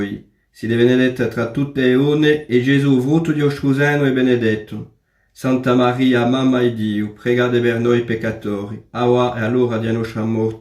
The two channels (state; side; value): identical; both; correlation 1.00